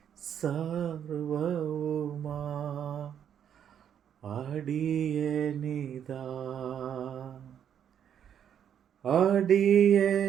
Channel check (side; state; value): left; quieter; 9.0 dB